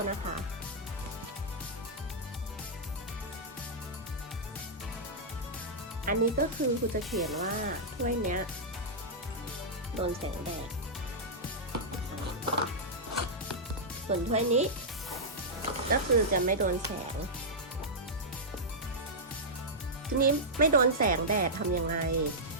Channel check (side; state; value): both; normal; correlation -0.10